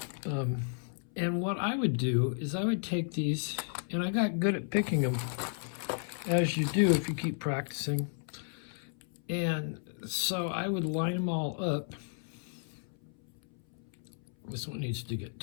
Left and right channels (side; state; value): right; silent; 56 dB below the other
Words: And what I would do is I would take these, and I got good at picking them, as you do if you keep practicing. And so I would line them all up. This one needs to get